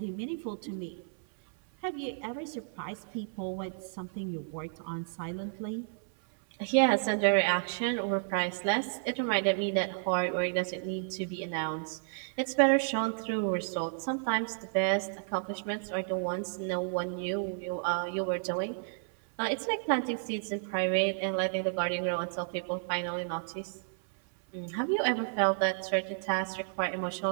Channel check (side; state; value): left; silent; 57 dB below the other